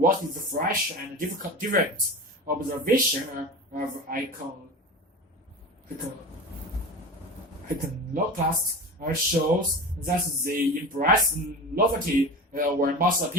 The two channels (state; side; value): normal; both; correlation 0.30